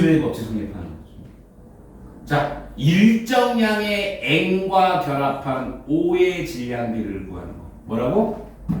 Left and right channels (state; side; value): identical; both; correlation 1.00